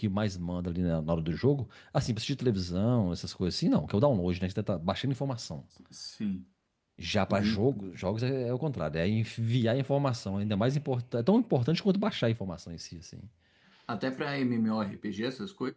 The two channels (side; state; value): both; identical; correlation 1.00